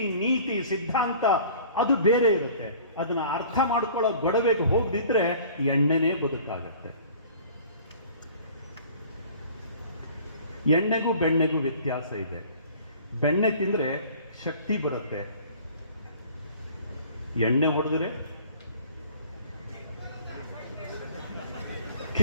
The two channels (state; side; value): inverted; both; correlation -0.48